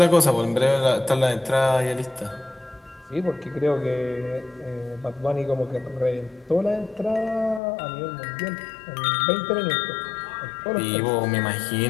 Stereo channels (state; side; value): drops out; right; at 7.6 s